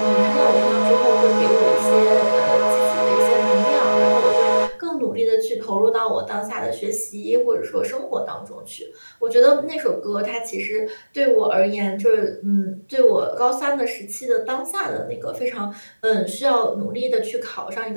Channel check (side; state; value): both; inverted; correlation -1.00